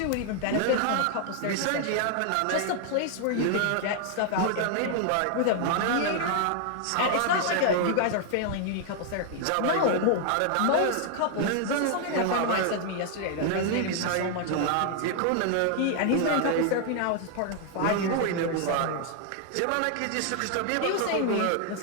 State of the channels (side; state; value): both; different; correlation 0.00